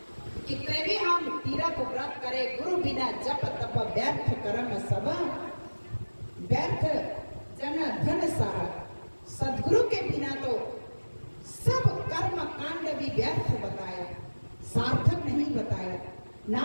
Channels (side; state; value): both; inverted; correlation -1.00